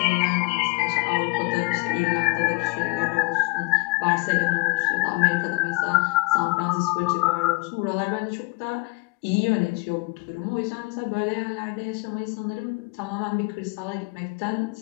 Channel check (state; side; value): quieter; right; 26.7 dB